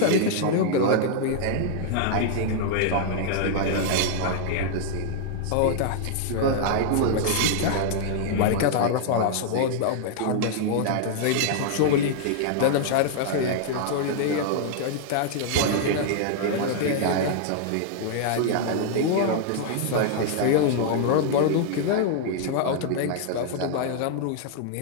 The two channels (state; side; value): different; both; correlation -0.01